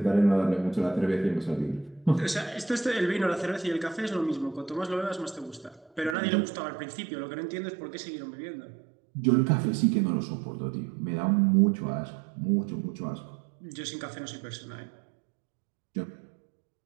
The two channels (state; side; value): drops out; left; at 6.2 s